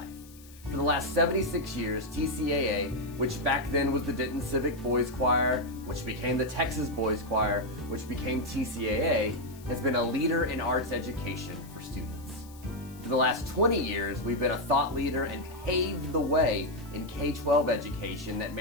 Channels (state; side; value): noise; left; hiss, 22 dB below the sound